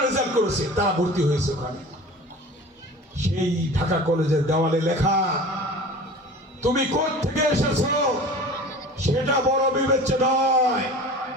রেজাল্ট করেছে তারা ভর্তি হয়েছে ওখানে। সেই ঢাকা কলেজের দেওয়ালে লেখা, তুমি কোথা থেকে এসেছো সেটা বড় বিবেচ্য নয়,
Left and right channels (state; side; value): normal; both; correlation 0.39